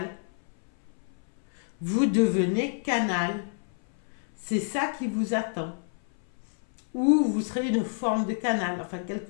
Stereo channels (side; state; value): right; silent; 58 dB below the other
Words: Vous devenez canal. C'est ça qui vous attend. Ou vous serez une forme de canal, enfin